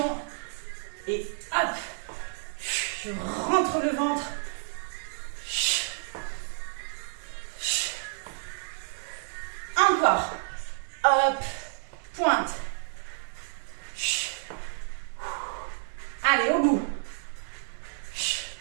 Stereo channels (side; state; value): left; silent; digital silence